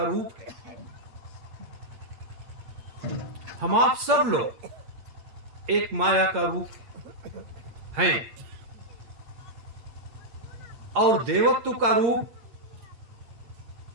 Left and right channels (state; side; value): late; left; 8.6 ms